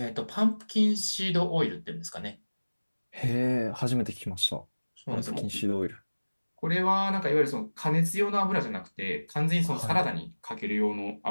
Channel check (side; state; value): both; inverted; correlation -1.00